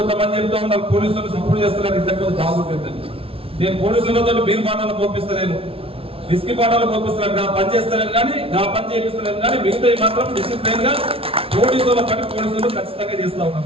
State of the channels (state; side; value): late; left; 0.27 ms